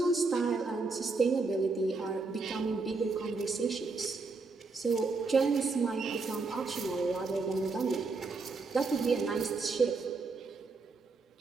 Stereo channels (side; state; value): left; quieter; 4.0 dB